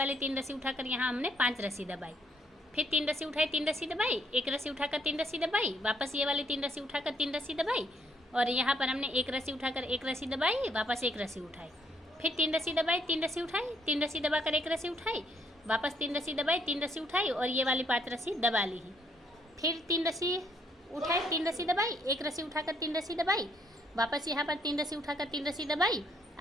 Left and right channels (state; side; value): normal; both; correlation 0.69